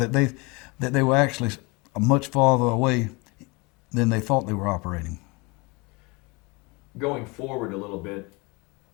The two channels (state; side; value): quieter; right; 27.2 dB